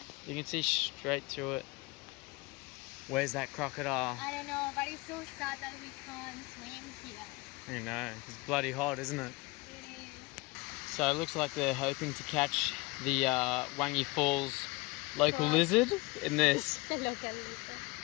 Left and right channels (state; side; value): quieter; right; 23.7 dB